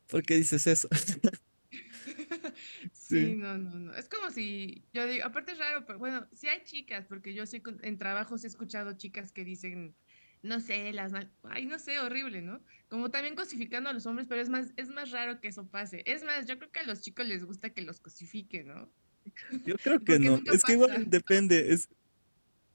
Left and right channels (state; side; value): inverted; both; correlation -1.00